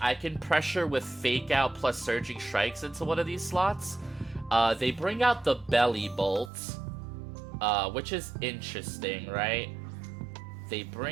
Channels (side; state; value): left; drops out; at 6.5 s